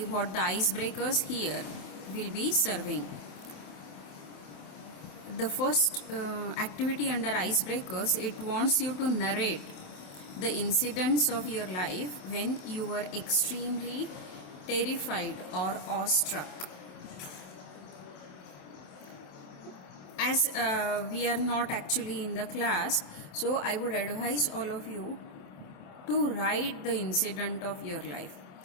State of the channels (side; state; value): right; late; 27 ms